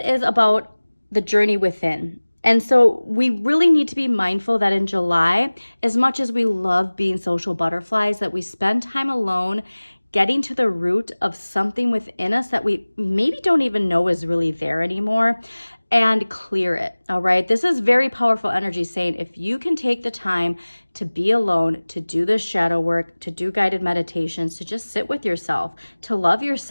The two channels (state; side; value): inverted; both; correlation -1.00